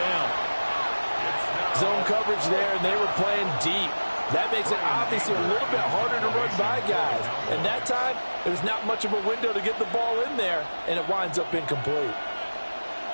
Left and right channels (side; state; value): both; inverted; correlation -1.00